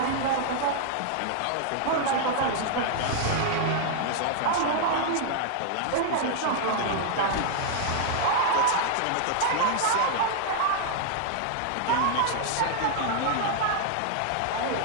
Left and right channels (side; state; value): both; different; correlation -0.01